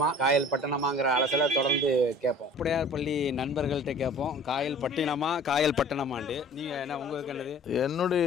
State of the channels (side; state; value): both; normal; correlation 0.46